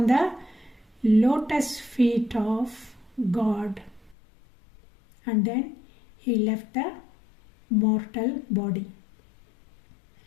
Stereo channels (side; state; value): right; drops out; at 4.2 s